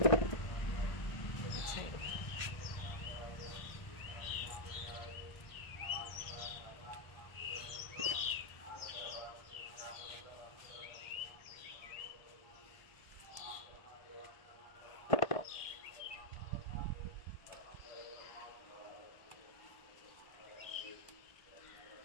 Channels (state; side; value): late; right; 1.5 ms